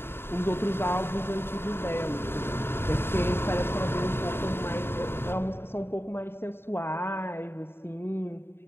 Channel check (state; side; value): late; right; 0.11 ms